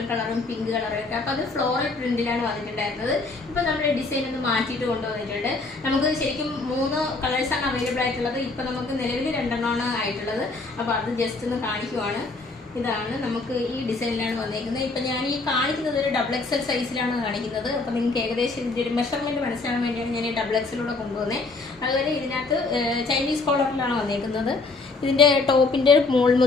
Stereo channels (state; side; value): quieter; right; 3.6 dB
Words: കളറും പിങ്ക് കളറും ഒക്കെ. അപ്പോൾ അത് ഫ്ലോറൽ പ്രിന്റിലാണ് വന്നിട്ടുണ്ടായിരുന്നത്. ഇപ്പോൾ നമ്മുടെ ഡിസൈൻ ഒന്ന് മാറ്റിയിട്ട് കൊണ്ടുവന്നിട്ടുണ്ട്. നമുക്ക് ശരിക്കും 3 കളേഴ്സാണ് അവൈലബിൾ ആയിട്ടുള്ളത്. ഇപ്പോൾ നമുക്ക് നിലവിൽ 2 ആയിട്ടുള്ളത്. അപ്പോൾ അത് ജസ്റ്റ് ഒന്ന് കാണിക്കുവാണ്. ഇതാണ് നമുക്ക് ഈ ഡിസൈനിലാണ് വന്നേക്കുന്നത്. ഇപ്പം ഞാൻ ഈ കാണിക്കുന്നത് ഒരു XXL സൈസിലാണ് കാണിക്കുന്നത്. അപ്പം നിങ്ങൾക്ക് ഏകദേശം ഇതിൻ്റെ ഒരു മെഷർമെൻറ്റ് മനസ്സിലാകാൻ വേണ്ടിയാണ് ഞാൻ ഈ XXLൂടെ കൊണ്ടുവന്നത്. അതുപോലെ ഇതിനകത്ത് ചൈനീസ് കോളറിലാണ് വന്നേക്കുന്നത്. ഇതിൻ്റെ ടോപ്പിൻ്റെ മുകൾ